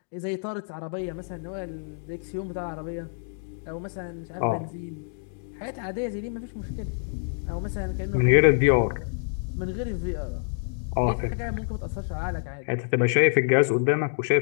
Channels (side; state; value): right; silent; digital silence